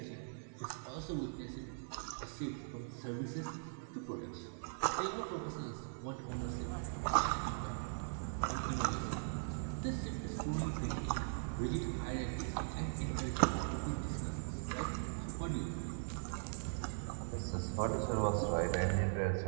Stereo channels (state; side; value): silent; left; digital silence